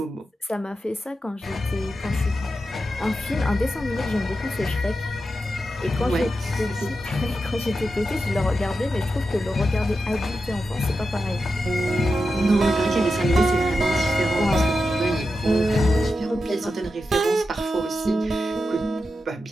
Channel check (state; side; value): normal; both; correlation 0.89